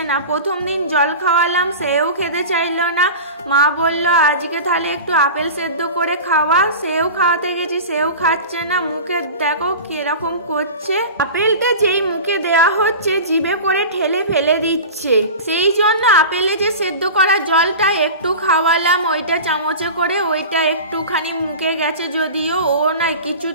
না। প্রথম দিন জল খাওয়ালাম, সেও খেতে চাইলো না। মা বললো আজকে তাহলে একটু আপেল সেদ্ধ করে খাওয়া। সেও খাওয়াতে গেছি, সেও খাচ্ছে না। মুখে দেখো কিরকম করছে। আপেলটা যেই মুখে দেওয়া হচ্ছে জিভে করে ঠেলে ফেলে দিচ্ছে। সেই জন্য আপেলে যে সেদ্ধ করা জলটা একটু খাওয়ালাম, ওইটা চামচে করে, ওইটা একটুখানি মুখে গেছে। যদিও ও না কিছু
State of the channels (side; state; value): both; inverted; correlation -0.32